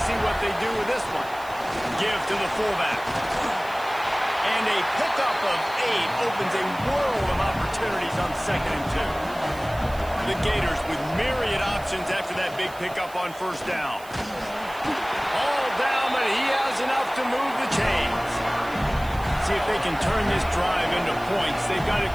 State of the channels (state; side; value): noise; right; hiss, 20 dB below the sound